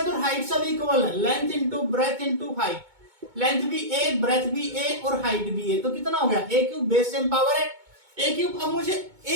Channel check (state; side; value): late; left; 2.2 ms